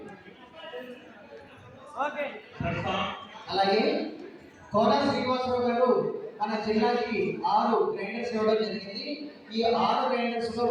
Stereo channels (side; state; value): both; identical; correlation 1.00